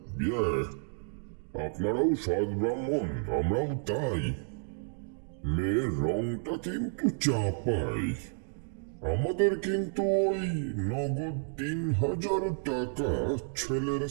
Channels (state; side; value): silent; left; digital silence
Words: আপনারাও সৎ ব্রাহ্মণ, আমরাও তাই। মেয়ের রংটা কিন্তু চাপাই। আমাদের কিন্তু ওই নগদ 3000 টাকা, ছেলের